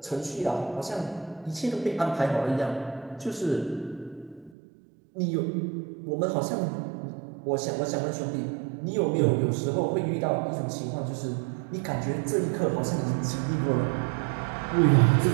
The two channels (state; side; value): drops out; left; at 4.5 s